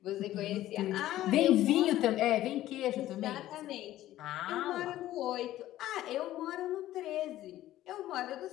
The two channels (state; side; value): quieter; right; 14.3 dB